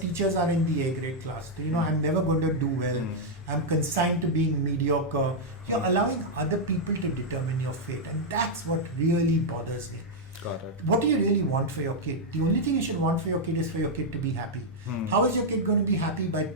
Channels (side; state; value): both; normal; correlation -0.04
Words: are in the A grade class. So, I'm never going to do well. I'm consigned to being mediocre. You're allowing other people to determine your fate, and that's what really bothers me. Got it. What do you really want for your kid? The only thing you should want for your kid is for your kid to be happy. How is your kid going to be happy? By